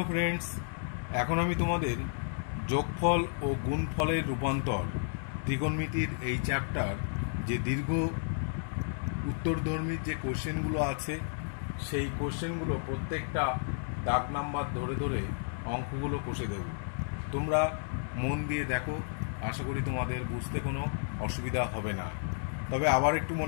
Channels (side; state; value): right; silent; 56 dB below the other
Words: friends, এখন আমি তোমাদের যোগফল ও গুণফলের রূপান্তর ত্রিকোণমিতির এই চ্যাপ্টার যে দীর্ঘ উত্তরধর্মীর যে কোশ্চেনগুলো আছে সেই কোশ্চেনগুলো প্রত্যেকটা দাগ নাম্বার ধরে ধরে অঙ্কগুলো কষে দেব। তোমরা মন দিয়ে দেখো, আশা করি তোমাদের বুঝতে কোনো অসুবিধা হবে না। তবে আবার একটু